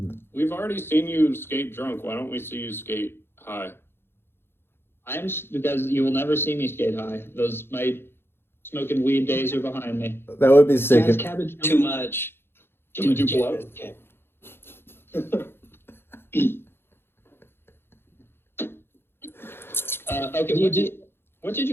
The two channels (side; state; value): right; late; 0.11 ms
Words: We've already seen you skate drunk. Why don't we see you skate high? Because you will never see me skate high. My smoking weed days are behind me. that would be sick. Jazz If, cabbage. Too much. Do we do blow? Okay, what did